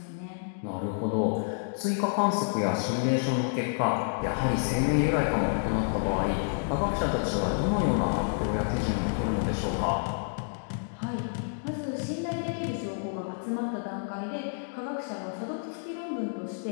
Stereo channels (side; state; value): right; silent; digital silence